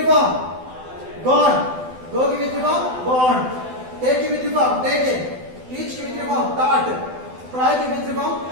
form gone go ki v3 form gone take ki v3 form taken teach ki v3 form taught try ki v3 form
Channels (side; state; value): left; late; 12 ms